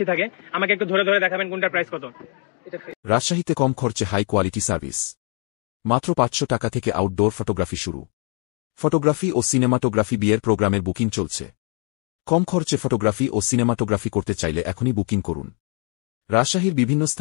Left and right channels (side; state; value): right; quieter; 35.6 dB